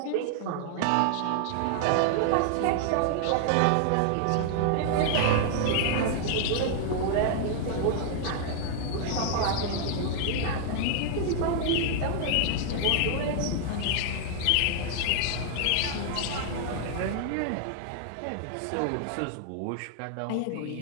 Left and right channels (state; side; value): different; both; correlation 0.00